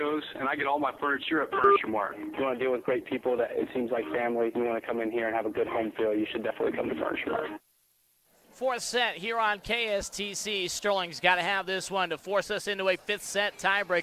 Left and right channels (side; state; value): both; identical; correlation 1.00